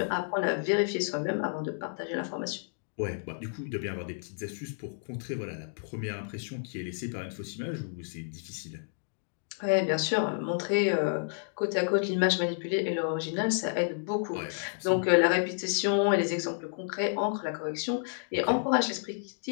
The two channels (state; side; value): silent; right; digital silence